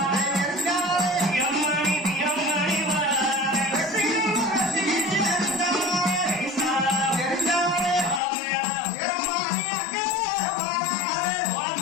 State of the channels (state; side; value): drops out; right; at 8.2 s